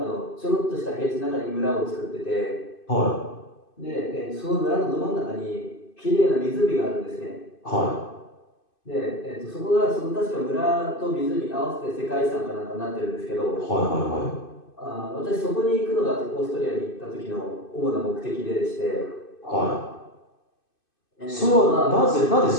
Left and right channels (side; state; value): right; late; 2.5 ms